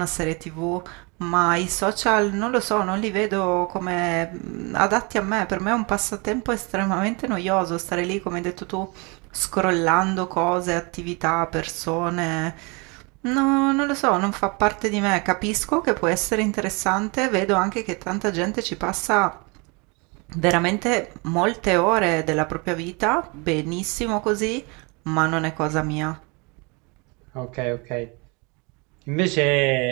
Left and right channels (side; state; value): left; quieter; 30.0 dB